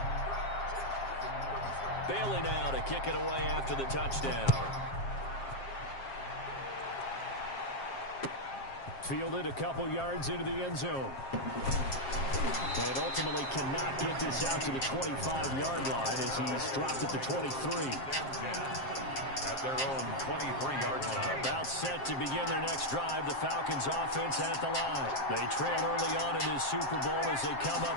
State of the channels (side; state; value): right; late; 7.5 ms